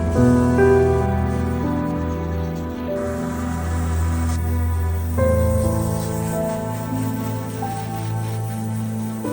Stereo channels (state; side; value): identical; both; correlation 1.00